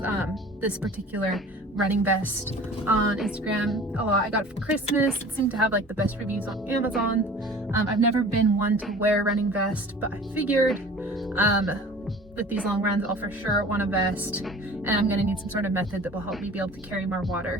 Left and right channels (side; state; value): both; normal; correlation 0.44